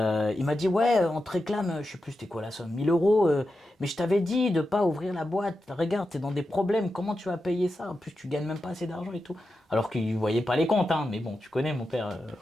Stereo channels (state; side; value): normal; both; correlation 0.90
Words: m'a dit, ouais, on te réclame, je sais plus c'était quoi la somme, 1000 euros, mais je t'avais dit de pas ouvrir la boîte. Regarde, t'es dans des problèmes, comment tu vas payer ça? En plus, tu gagnes même pas assez d'argent et tout. Alors qu'il voyait pas les comptes, hein, mais bon, tu connais mon père,